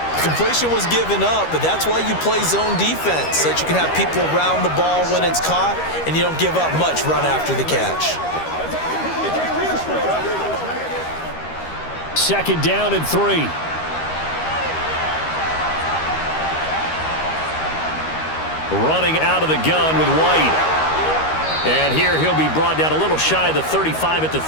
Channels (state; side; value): late; right; 13 ms